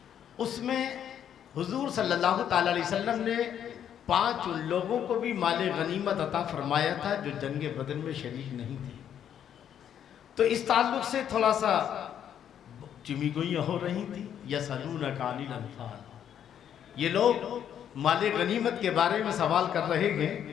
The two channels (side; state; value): right; quieter; 9.5 dB